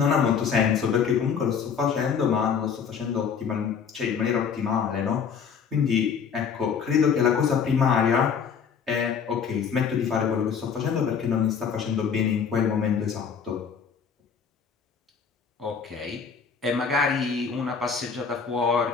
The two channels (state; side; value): quieter; right; 6.6 dB